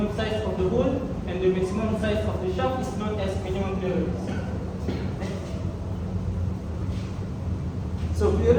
size of the hole and the maximum size of the shaft is known as minimum clearance. So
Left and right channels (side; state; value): both; identical; correlation 1.00